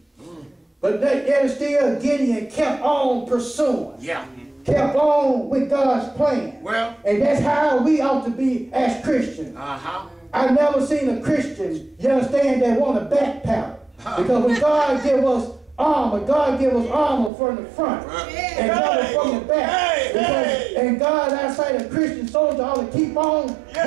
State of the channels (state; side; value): drops out; left; at 17.3 s